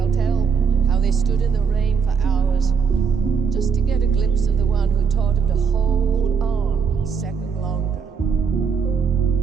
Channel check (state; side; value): quieter; left; 6.1 dB